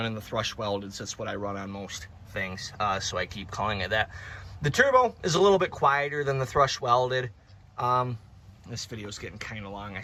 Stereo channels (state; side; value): identical; both; correlation 1.00